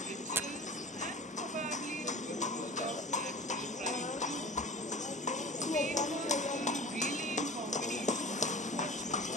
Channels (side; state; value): both; normal; correlation 0.38